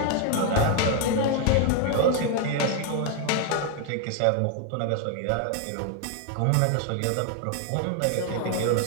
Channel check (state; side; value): different; both; correlation 0.01